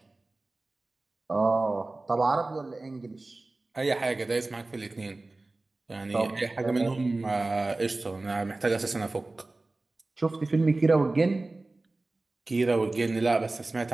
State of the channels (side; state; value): left; quieter; 3.1 dB